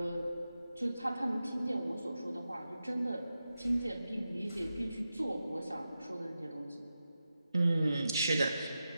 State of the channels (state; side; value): inverted; both; correlation -0.91